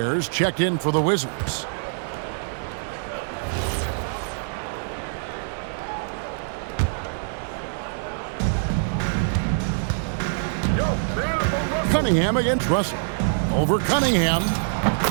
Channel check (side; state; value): left; silent; 61 dB below the other